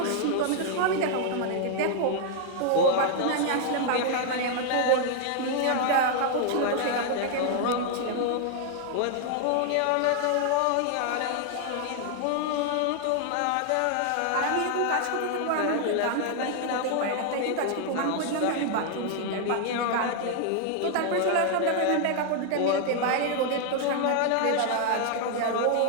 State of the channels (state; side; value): different; both; correlation 0.00